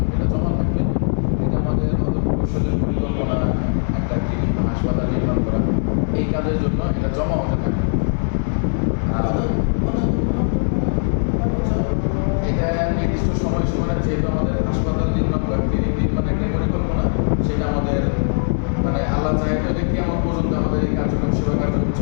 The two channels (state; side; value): silent; right; digital silence